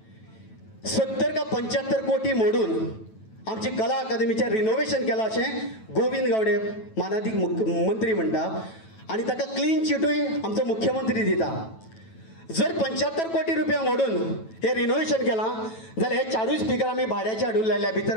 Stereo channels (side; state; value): right; late; 9.1 ms